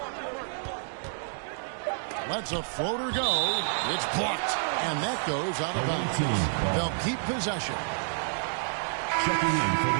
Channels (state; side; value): silent; left; 59 dB below the other